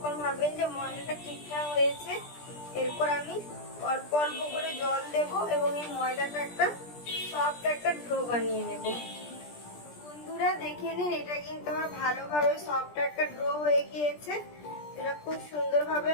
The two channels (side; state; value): right; late; 17 ms